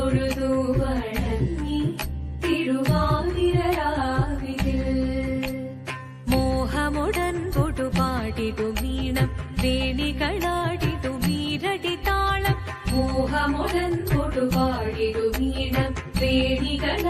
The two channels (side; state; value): both; identical; correlation 1.00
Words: വണങ്ങി തിരുവാതിരരാവിതിൽ മോഹമുടൻ പൊടുപാടിടു വീണം വേണികളാടിടു മീരടി താളം മോഹമുടൻ കൊടുപാടിടു വീണം